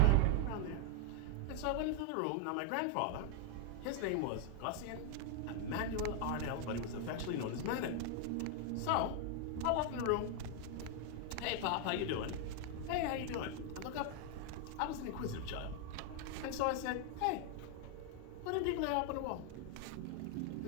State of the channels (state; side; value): different; both; correlation 0.00